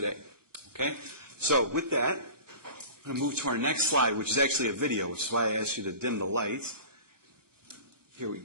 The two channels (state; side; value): late; left; 1.1 ms